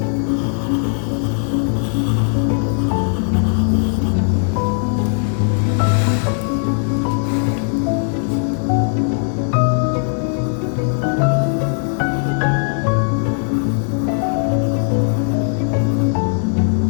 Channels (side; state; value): right; silent; 61 dB below the other